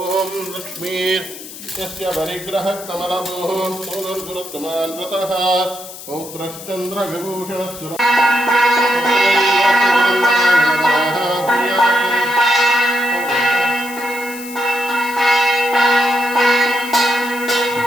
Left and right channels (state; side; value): noise; left; hiss, 14 dB below the sound